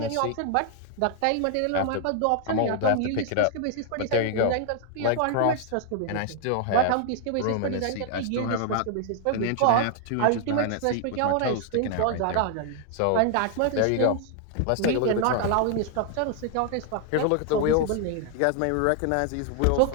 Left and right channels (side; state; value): both; different; correlation 0.00